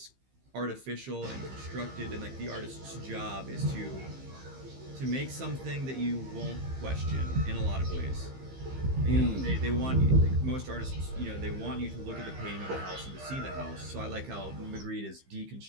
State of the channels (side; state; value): left; late; 15 ms